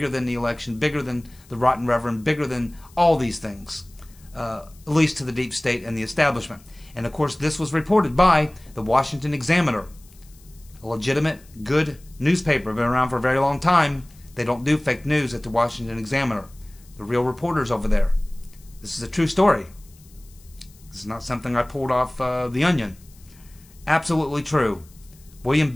than the election, bigger than the Rotten Reverend, bigger than all these things, at least to the deep state and the establishment. And of course, this was reported by the Washington Examiner, a legitimate, good newspaper, been around for a very long time. They don't do fake news at the Washington Examiner. The real reporters over there. This is a true story. This is not something I pulled off The Onion. Absolutely true. William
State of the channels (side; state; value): left; noise; hiss, 27 dB below the sound